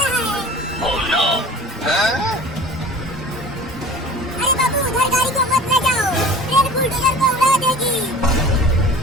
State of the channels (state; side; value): normal; both; correlation 0.42